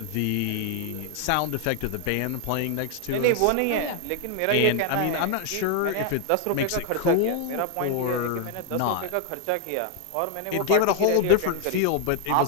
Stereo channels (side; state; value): both; different; correlation 0.00